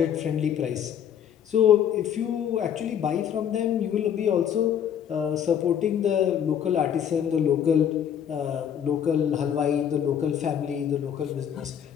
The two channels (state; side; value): quieter; right; 9.0 dB